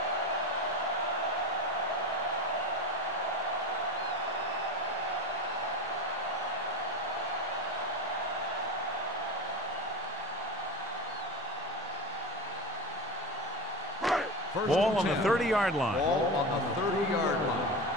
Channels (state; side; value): normal; both; correlation 0.25